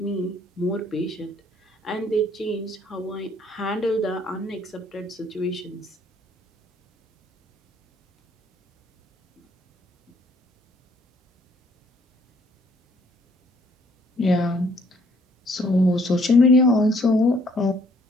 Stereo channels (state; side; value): normal; both; correlation 0.63